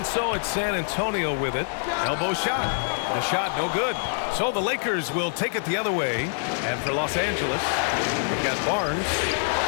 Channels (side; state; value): right; silent; 61 dB below the other